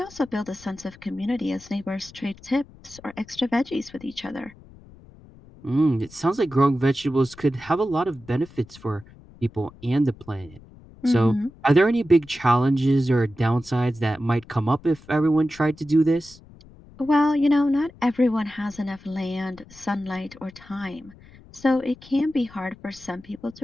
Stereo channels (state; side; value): noise; left; rumble, 22 dB below the sound